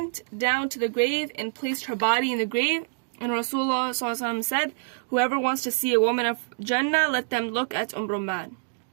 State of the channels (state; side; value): silent; left; digital silence